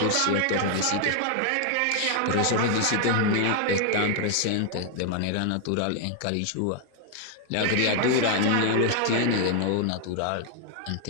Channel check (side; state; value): both; different; correlation 0.00